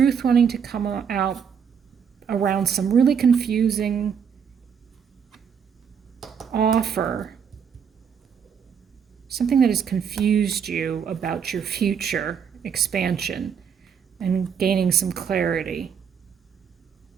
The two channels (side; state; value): left; quieter; 7.2 dB